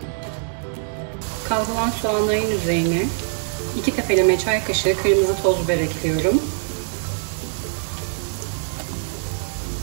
Kavrulan soğanların üzerine 2 tepeleme çay kaşığı kırmızı toz biber ekliyorum.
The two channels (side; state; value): left; silent; digital silence